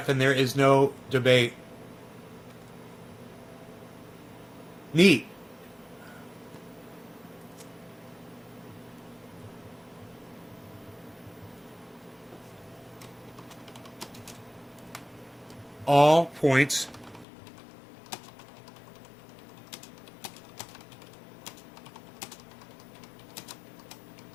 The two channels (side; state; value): right; drops out; at 17.2 s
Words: and there is no debate. Neat. All points